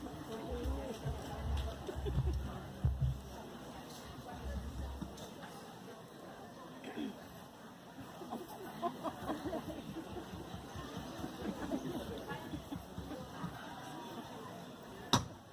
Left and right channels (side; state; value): both; identical; correlation 1.00